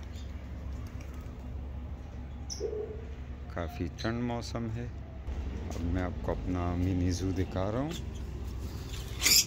काफ़ी ठंड मौसम है। अब मैं आपको अपना मिनी ज़ू दिखा रहा हूँ।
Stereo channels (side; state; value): both; identical; correlation 1.00